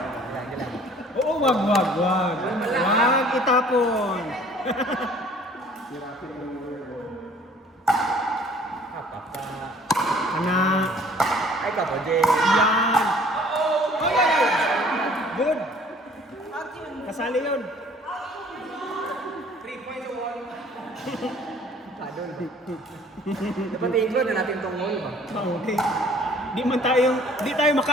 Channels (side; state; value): both; normal; correlation 0.54